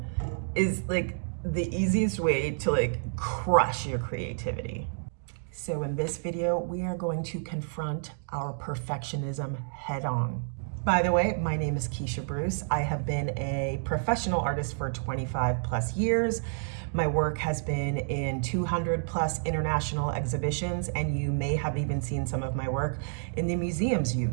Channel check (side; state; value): left; silent; digital silence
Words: is like the easiest way to like crush your creativity. So in this video, we are going to confront our perfectionism head on. By the way, my name is Keisha Bruce. I have been a professional artist for 25 plus years. My work has been in 200 plus international exhibitions, and you may have even seen some of my work in the museums you